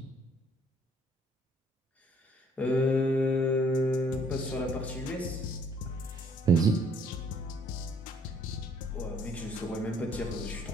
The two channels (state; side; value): normal; both; correlation 0.62